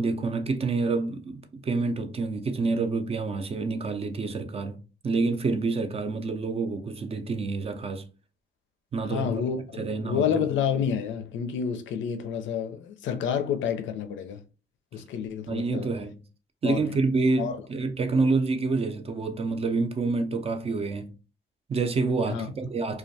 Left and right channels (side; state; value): both; normal; correlation 0.62